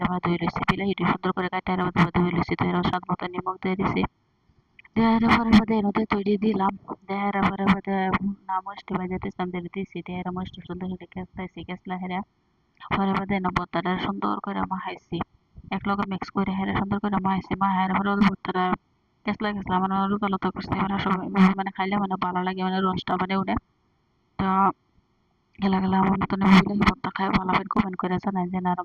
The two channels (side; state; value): both; identical; correlation 1.00